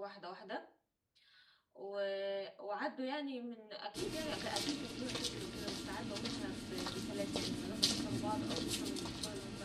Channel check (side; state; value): both; identical; correlation 1.00